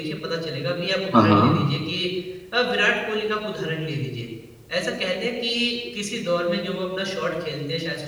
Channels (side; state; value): both; identical; correlation 1.00